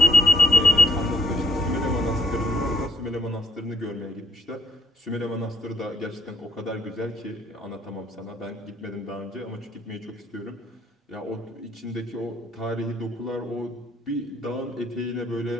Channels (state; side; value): normal; both; correlation 0.66